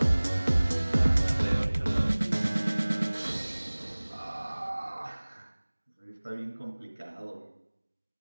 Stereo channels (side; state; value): both; inverted; correlation -1.00